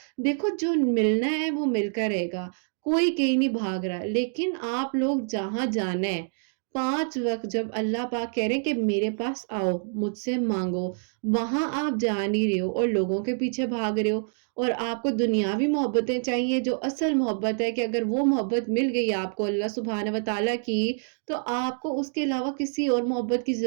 دیکھو جو ملنا ہے وہ مل کر رہے گا، کوئی کہیں نہیں بھاگ رہا، لیکن آپ لوگ جہاں جانا ہے 5 وقت جب اللہ پاک کہہ رہے ہیں کہ میرے پاس آؤ مجھ سے مانگو، وہاں آپ جا نہیں رہے ہو اور لوگوں کے پیچھے بھاگ رہے ہو، اور آپ کو دنیاوی محبتیں چاہیے جو اصل محبت ہے، کہ اگر وہ محبت مل گئی آپ کو اللہ سبحانہ و تعالیٰ کی، تو آپ کو اس کے علاوہ کسی اور محبت کی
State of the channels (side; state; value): left; silent; digital silence